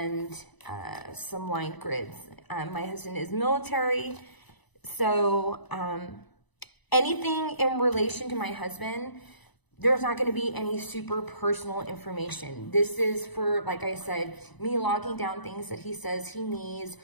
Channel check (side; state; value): right; late; 1.0 ms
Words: some line grids. My husband is military, so anything in relation to my husband, there's not going to be any super personal information. This is for, like I said, me logging down things that he says he needs,